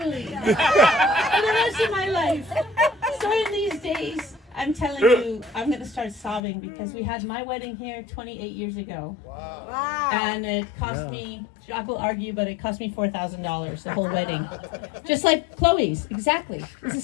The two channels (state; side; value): drops out; right; at 6.4 s